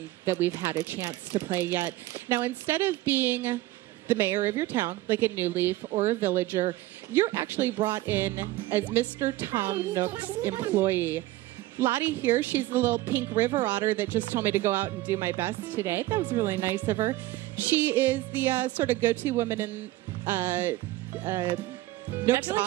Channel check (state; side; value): quieter; left; 17.1 dB